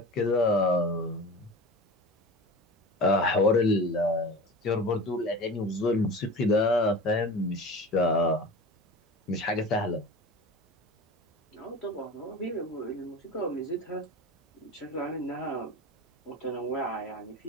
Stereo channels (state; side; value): normal; both; correlation 0.34